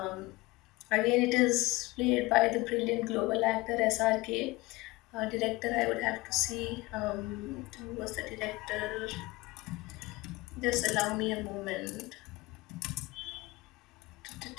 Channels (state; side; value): quieter; right; 21.5 dB